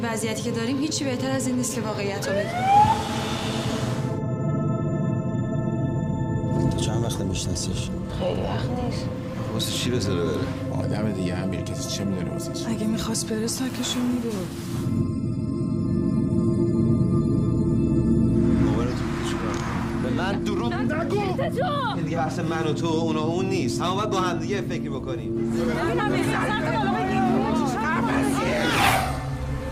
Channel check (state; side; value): identical; both; correlation 1.00